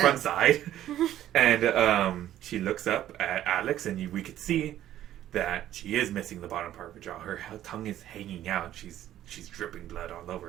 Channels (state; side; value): quieter; left; 12.4 dB